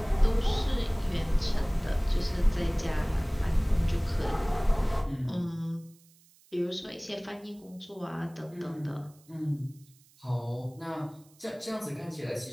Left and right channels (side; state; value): right; noise; hiss, 29 dB below the sound